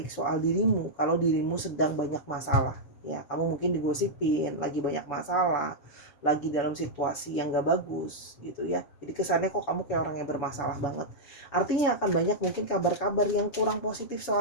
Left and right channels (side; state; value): right; late; 7.0 ms